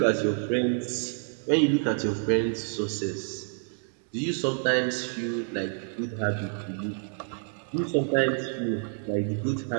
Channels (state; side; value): silent; left; 59 dB below the other